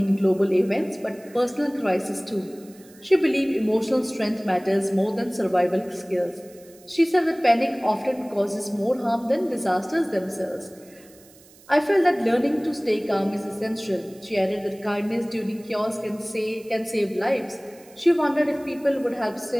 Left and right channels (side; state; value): right; noise; hiss, 25 dB below the sound